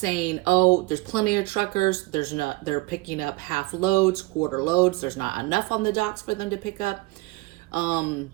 oh, there's plenty of truckers. They're picking up half loads, quarter loads. There's not enough on the docks for them to pick up.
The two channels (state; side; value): quieter; left; 21.9 dB